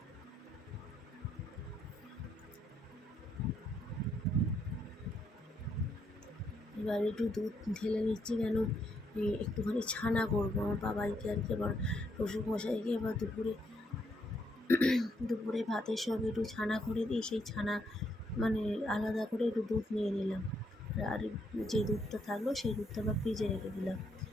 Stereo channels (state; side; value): normal; both; correlation 0.75